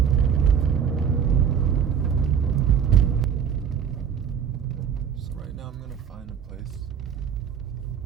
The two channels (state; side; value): quieter; left; 7.7 dB